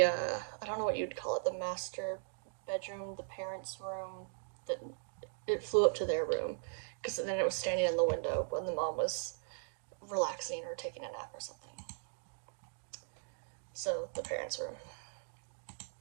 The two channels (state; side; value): silent; left; digital silence